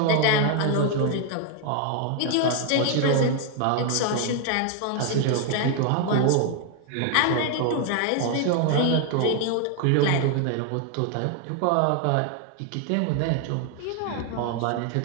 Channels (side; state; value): both; different; correlation 0.00